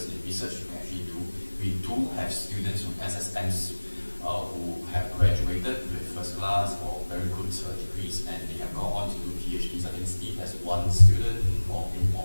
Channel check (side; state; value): both; inverted; correlation -1.00